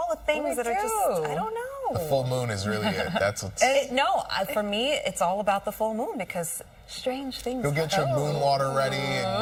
the things that are just, I don't know. The full moon is really it. That's what's... No, for me, it's all about the full moon because strange things. You'll get your moon water ready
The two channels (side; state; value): both; identical; correlation 1.00